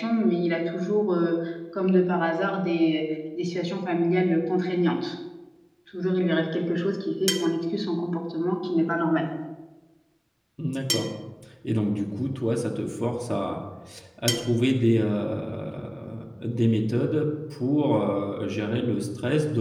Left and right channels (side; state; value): both; identical; correlation 1.00